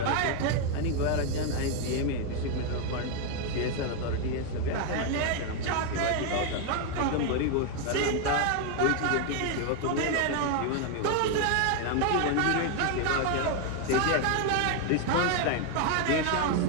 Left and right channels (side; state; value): both; different; correlation 0.01